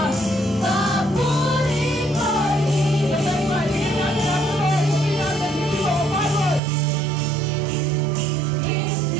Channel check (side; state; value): left; drops out; at 6.6 s